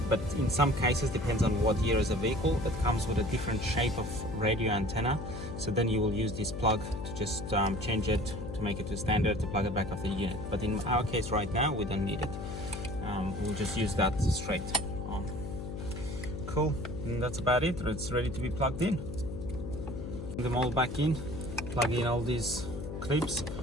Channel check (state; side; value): noise; left; hum, 7 dB below the sound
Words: But in some cases, depends on what year is the vehicle, it comes with a different shape of radio antenna. So then you will use this plug to just change it to make it to standard, to plug it back off the unit. But in our case right now, we don't need it. We'll just use that straight on. Cool, and that's about it. It's ready to be plugged in. Put them all back in, plug in all these clips,